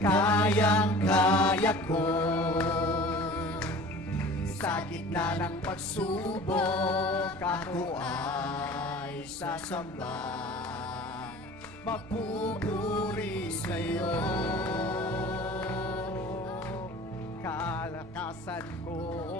ko. Sa gitna ng pagsubok, ako ay sasamba, magpupuri sa'yo. Kalakasan ko,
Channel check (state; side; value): normal; both; correlation 0.42